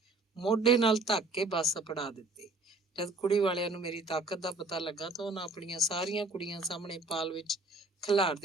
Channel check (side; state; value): left; quieter; 3.0 dB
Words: ਮੋਢੇ ਨਾਲ ਧੱਕ ਕੇ ਬੱਸ ਅਪੜਾ ਦਿੱਤੀ। ਜਦ ਕੁੜੀ ਵਾਲਿਆਂ ਨੂੰ ਮੇਰੀ ਤਾਕਤ ਦਾ ਪਤਾ ਲੱਗਾ ਤਾਂ ਉਹਨਾਂ ਆਪਣੀਆਂ ਸਾਰੀਆਂ ਕੁੜੀਆਂ ਸਾਹਮਣੇ ਪਾਲ ਵਿੱਚ